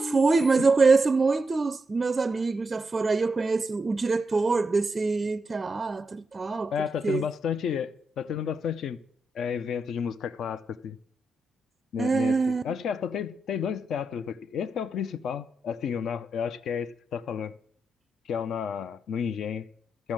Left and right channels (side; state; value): both; normal; correlation 0.85